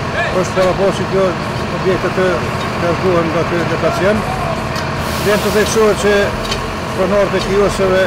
është paraportë që objektet të largohen nga ky lokacion. Vjen të theksohet që pronarit e kioskeve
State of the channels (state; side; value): identical; both; correlation 1.00